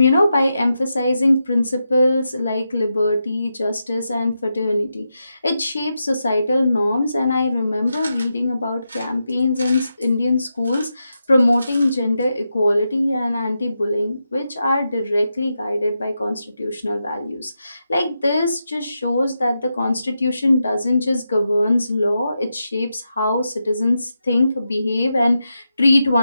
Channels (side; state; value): both; inverted; correlation -0.87